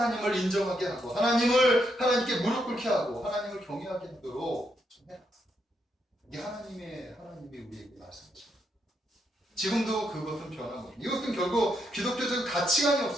인정하게 하고 하나님께 무릎 꿇게 하고 하나님을 경외하게 하도록 좀 해라. 이게 하나님이 우리에게 말씀하십니다. 지금도 그것은 변함없습니다. 이것은 결국 기독교적 가치관이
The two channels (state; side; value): normal; both; correlation 0.79